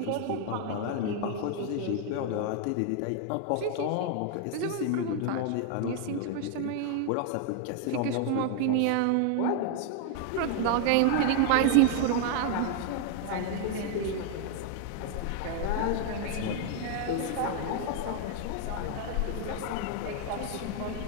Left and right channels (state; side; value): different; both; correlation 0.00